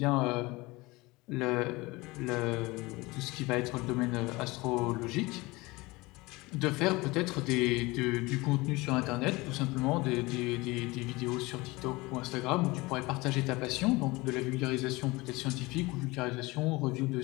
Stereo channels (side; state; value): right; quieter; 22.5 dB